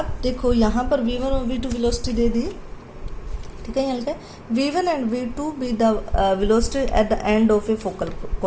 देखो यहाँ पर v1 और v2 वेलोसिटी दे दी। ठीक है, यहाँ लिखा है v1 and v2 be the velocity at the end of a focal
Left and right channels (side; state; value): both; identical; correlation 1.00